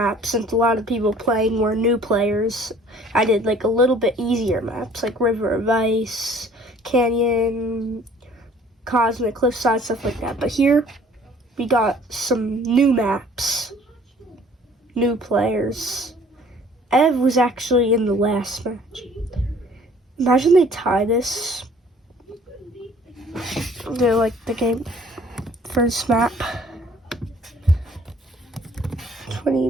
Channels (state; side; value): normal; both; correlation 0.54